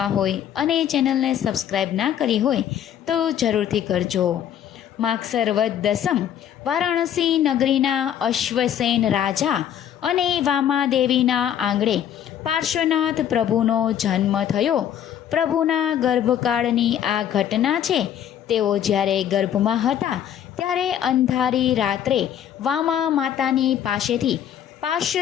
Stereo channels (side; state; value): right; quieter; 9.9 dB